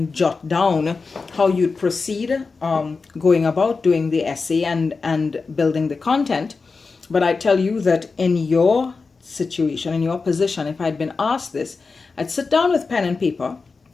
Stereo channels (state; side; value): quieter; right; 4.4 dB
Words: jot down how you'd proceed going about doing the essay and building the content. But I tell you that in your situation, in your position, if I'd been asked this, I'd sit down with pen and paper.